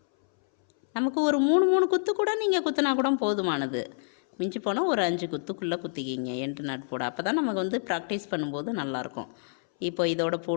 நமக்கு ஒரு 3 குத்து கூட நீங்கள் குத்துனா கூட போதுமானது. மிஞ்சி போனால் ஒரு 5 குத்துக்குள்ளே குத்திக்கிங்க எண்டு நாட் போட. அப்போ தான் நமக்கு வந்து ப்ராக்டிஸ் பண்ணும்போது நல்லாயிருக்கும். இப்போ இதோட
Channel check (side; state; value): right; silent; 60 dB below the other